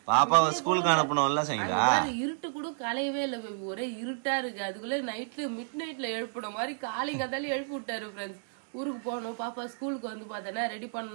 பாப்பாவை ஸ்கூலுக்கு அனுப்பணும்ல. இருட்டு கூட கலையவே இல்லை பேபி, ஒரே இருட்டா இருக்கு. அதுக்குள்ள நைட்ல மிட் நைட்ல எழுப்பின மாதிரி காலைங்காத்தாலும் எழுப்பி விட்டாரு ஃப்ரெண்ட்ஸ். ஊருக்கு போகணும், பாப்பா ஸ்கூலுக்கு வந்து பார்த்தேன்னா ரெடி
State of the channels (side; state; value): left; silent; digital silence